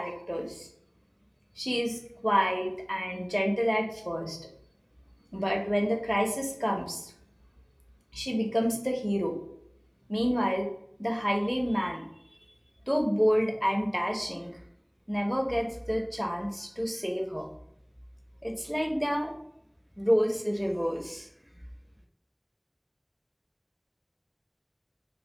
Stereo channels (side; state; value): both; identical; correlation 1.00